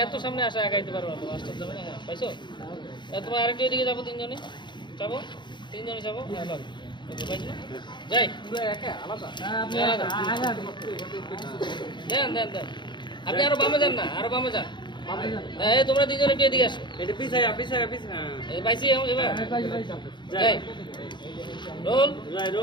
সামনে আসা একাইতে পারবো না তো মাস্টার যাবে না হ্যাঁ পাইছো তোমার আরেকটু এদিকে যাবো তিনজনে যাবো তিনজনে যাবো হ্যাঁ লাগ যাই দেন দেন দেন আপনি আরো বামে যান না আরো বামে যান এই তোমরা তিনজন একটু এদিকে আসো এটা পিছায় এই পাইছি এবার যাই রোল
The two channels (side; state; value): right; late; 0.22 ms